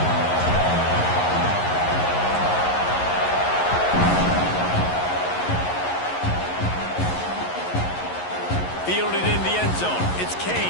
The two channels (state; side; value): late; right; 11 ms